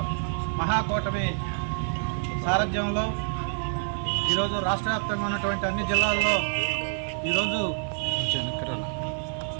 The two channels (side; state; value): left; silent; digital silence